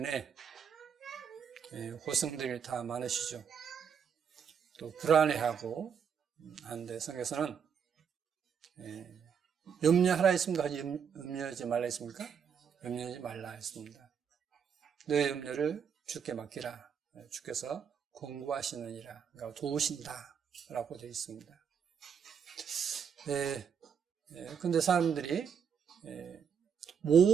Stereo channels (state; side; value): quieter; left; 7.2 dB